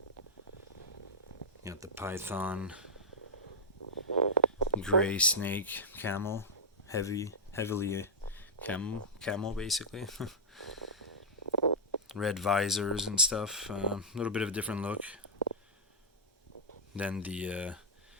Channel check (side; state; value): both; normal; correlation -0.07